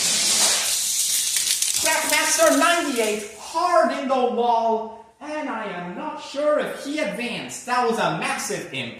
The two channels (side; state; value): both; identical; correlation 1.00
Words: Trackmaster 98 hard in the wall, and I am not sure if he advanced. That was a massive